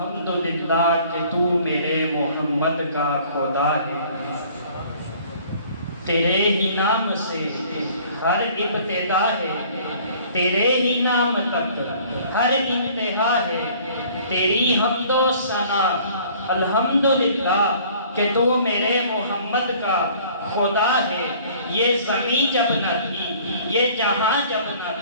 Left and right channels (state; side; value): inverted; both; correlation -0.53